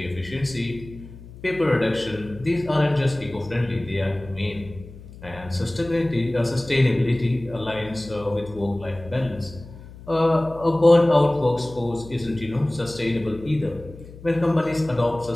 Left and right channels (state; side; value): noise; left; hum, 17 dB below the sound